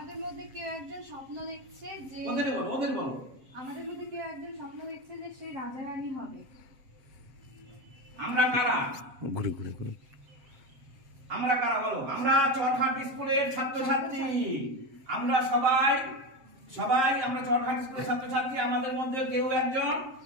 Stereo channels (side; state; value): left; late; 7.6 ms